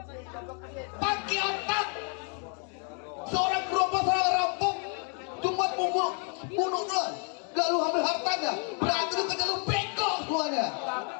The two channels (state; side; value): quieter; right; 39.6 dB